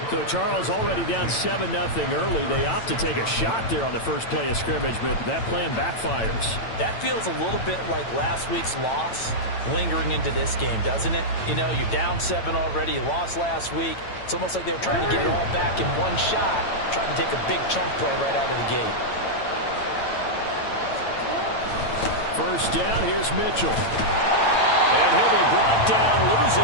So Charles already down 7-0 early. They opt to take a shot there on the first play of scrimmage, but that plan backfires. That feels a little bit like last week's loss lingering into this game, doesn't it? You know, you're down 7 already. You lost last week. It's almost like they were trying to get it all back in one shot, trying to take a big chunk play right out of the gate. First down, here's Mitchell. And he'll be brought down,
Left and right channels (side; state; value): right; late; 8.9 ms